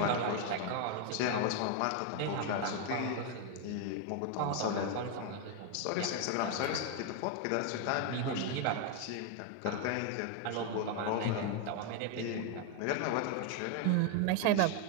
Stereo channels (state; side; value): different; both; correlation 0.01